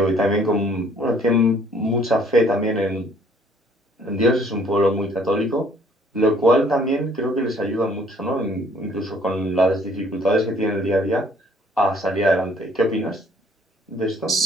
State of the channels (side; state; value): both; normal; correlation 0.60